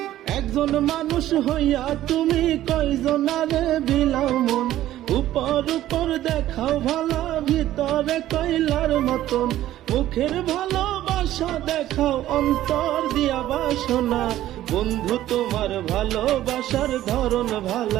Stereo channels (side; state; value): left; quieter; 13.6 dB